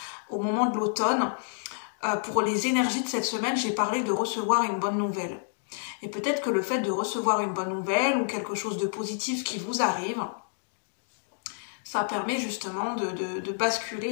au moment de l'automne, pour les énergies de cette semaine, j'ai parlé de recevoir une bonne nouvelle. Et peut-être que le fait de recevoir une bonne nouvelle ou quelque chose de positif qui vous arrive, ça permet justement de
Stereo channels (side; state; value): right; silent; digital silence